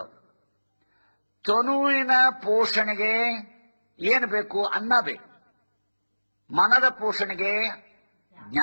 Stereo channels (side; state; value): both; inverted; correlation -1.00